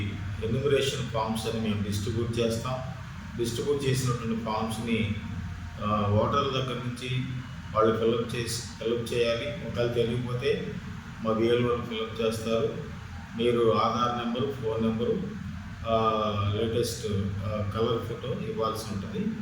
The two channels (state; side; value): identical; both; correlation 1.00